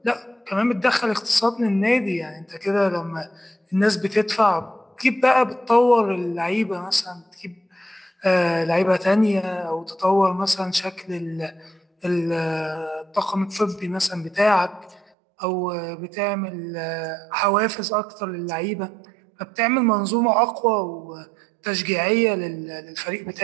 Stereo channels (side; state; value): left; drops out; at 15.1 s